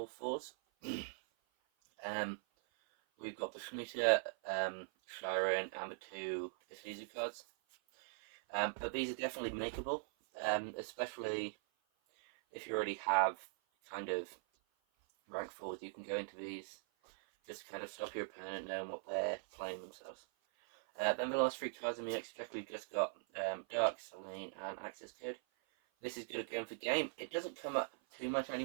4s. We've got the Shmita, Shiren, and the 2 Isuzu cards. But these are definitely makeable, especially if you already have kind of rank 4s. You can go into these, just kind of stop your opponent knowing what they're playing themselves. Then the last 3 cards in the extra deck, we've just got Dark, Selene, and Access Code. This is good at going for game. It doesn't come up too much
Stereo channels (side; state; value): left; silent; 50 dB below the other